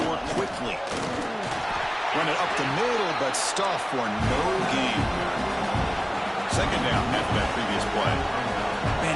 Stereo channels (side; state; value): both; identical; correlation 1.00